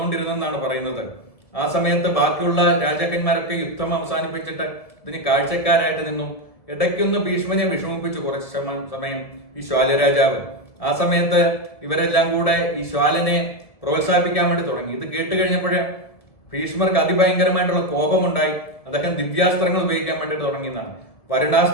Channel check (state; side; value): late; right; 1.7 ms